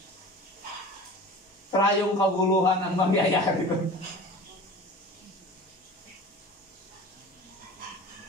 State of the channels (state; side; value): normal; both; correlation 0.38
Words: trayong kaguluhan ang mangyayari doon.